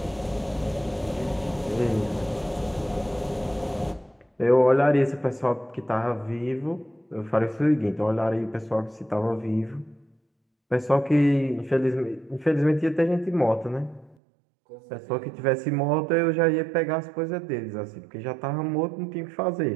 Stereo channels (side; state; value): left; drops out; at 14.2 s